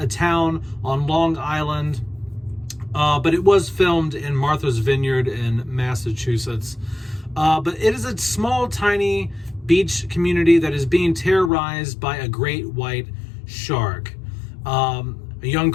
town on Long Island, but it was filmed in Martha's Vineyard in Massachusetts. But it is a small, tiny beach community that is being terrorized by a great white shark. A young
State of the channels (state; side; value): drops out; right; at 11.5 s